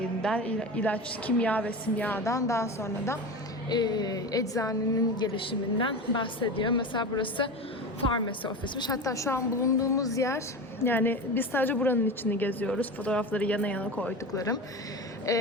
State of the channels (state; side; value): normal; both; correlation 0.26